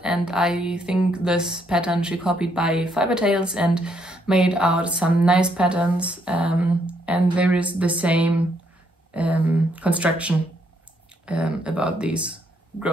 and I think this pattern she copied by Fiber Tales and made out some nice patterns, and there is the same construction about these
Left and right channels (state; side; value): normal; both; correlation 0.72